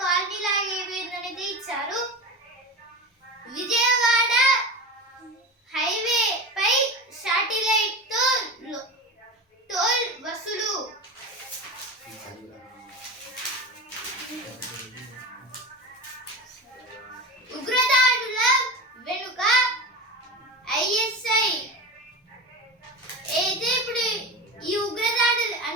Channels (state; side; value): normal; both; correlation 0.26